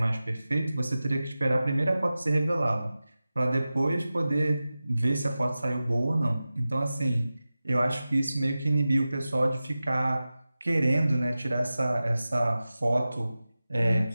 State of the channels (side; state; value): both; inverted; correlation -0.95